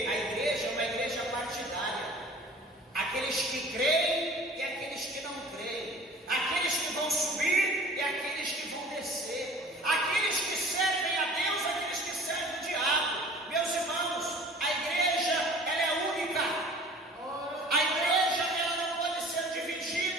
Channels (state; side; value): normal; both; correlation 0.46